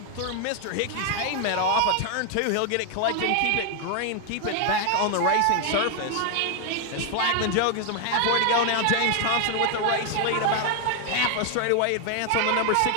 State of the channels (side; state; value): both; different; correlation 0.00